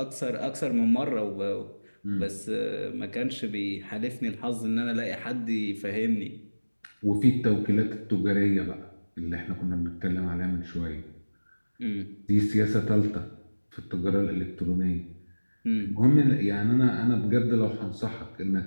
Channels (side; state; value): both; inverted; correlation -1.00